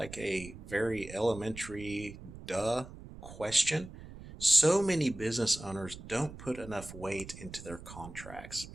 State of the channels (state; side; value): noise; right; rumble, 14 dB below the sound